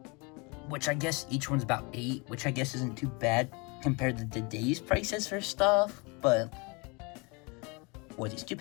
Which I guess each one's about $8, which I guess isn't too bad compared to today's prices for stuff. But what, these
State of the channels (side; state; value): right; quieter; 29.2 dB